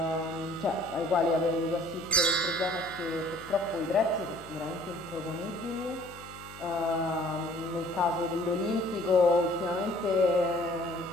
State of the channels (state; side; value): noise; left; hum, 18 dB below the sound